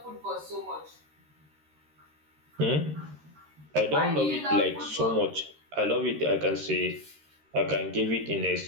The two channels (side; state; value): left; late; 13 ms